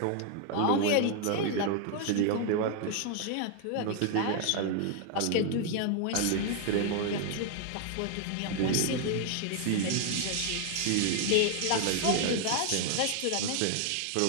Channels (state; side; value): different; both; correlation 0.00